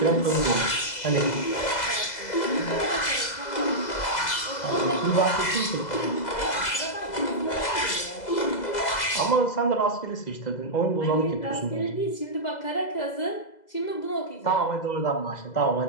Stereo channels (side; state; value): right; late; 2.0 ms